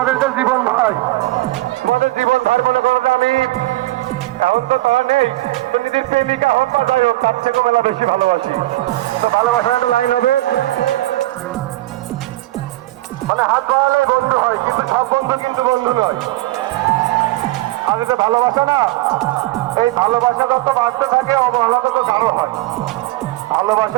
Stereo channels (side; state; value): left; quieter; 18.3 dB